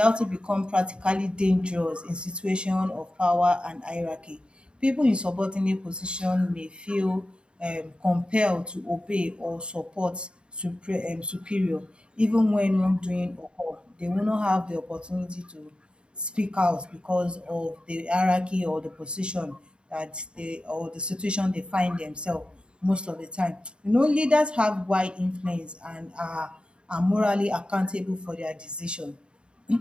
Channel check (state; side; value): late; left; 0.053 ms